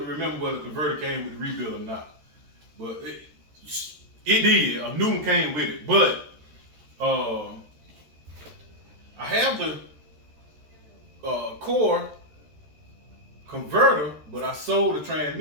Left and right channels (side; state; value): left; late; 13 ms